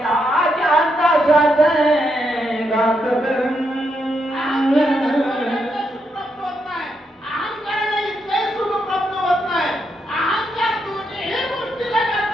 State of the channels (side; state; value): both; normal; correlation 0.80